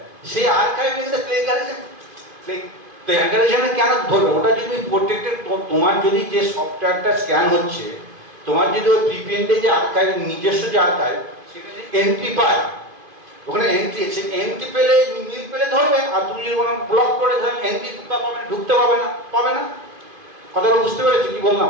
সেই আর্কাইভে কিন্তু প্লেগারিজমে কেন ধরবে? ওটা যদি প্রত্যেকটা তোমার যদি যে সফটওয়্যারটা স্ক্যান হচ্ছে, তোমার যদি ওই প্রিপেন্ডে যে আর্কাইভ, নিজস্ব যে আর্কাইভ, সেখানে এন্ট্রি পায়, ওখানে এন্ট্রি, সে এন্ট্রি পেলে মিল পেলে ধরবে। আর তুমি যদি কোনো ব্লক করে ধরেন এন্ট্রি ঢুকতে পাবে না। কথাটা বুঝতে পেরেছি কি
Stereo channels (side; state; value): left; late; 2.5 ms